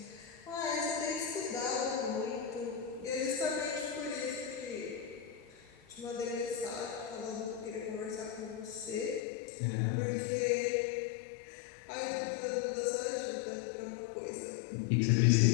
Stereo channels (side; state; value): right; drops out; at 9.2 s